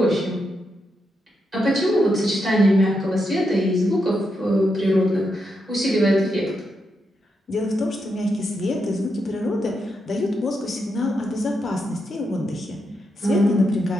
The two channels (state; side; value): normal; both; correlation 0.83